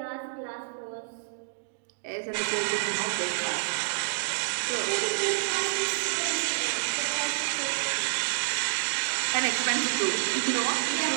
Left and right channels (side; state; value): left; silent; digital silence